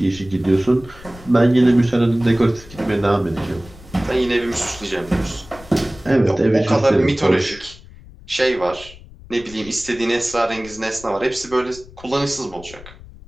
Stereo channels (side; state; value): left; noise; rumble, 20 dB below the sound